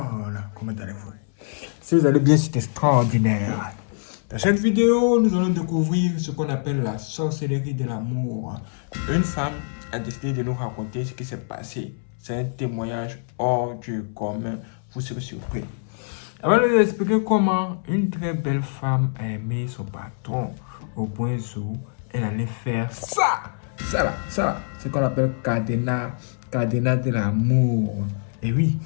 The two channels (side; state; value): right; silent; 62 dB below the other